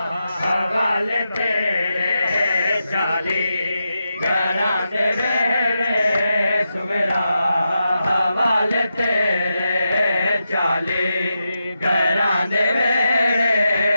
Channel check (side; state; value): both; inverted; correlation -0.88